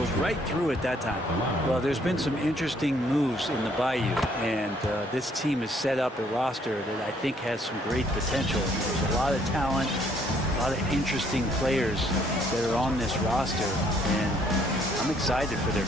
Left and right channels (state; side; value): normal; both; correlation 0.65